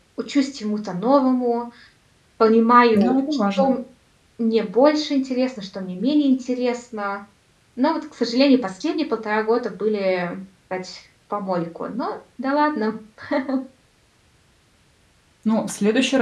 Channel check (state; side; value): identical; both; correlation 1.00